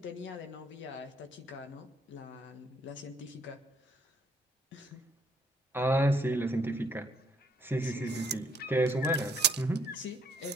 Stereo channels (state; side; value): normal; both; correlation 0.67